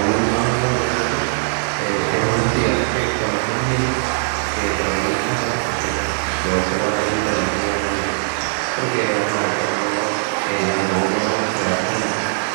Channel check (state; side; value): silent; left; 66 dB below the other